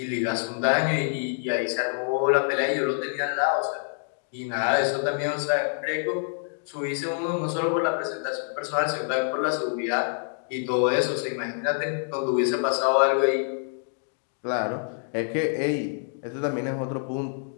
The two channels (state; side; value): silent; right; digital silence